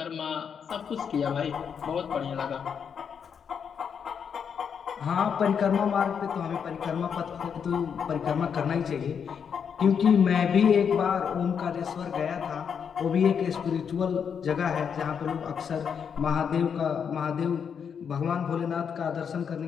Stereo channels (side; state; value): right; quieter; 7.1 dB